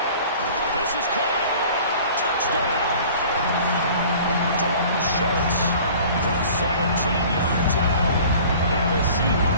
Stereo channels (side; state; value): both; inverted; correlation -0.46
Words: This is caught. Touchdown. Dalton Schultz from 17 yards out. And the